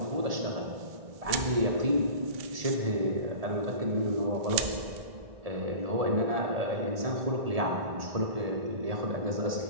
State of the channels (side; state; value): left; late; 1.7 ms